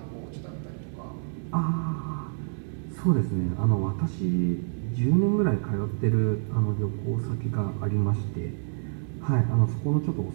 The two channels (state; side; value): silent; left; 60 dB below the other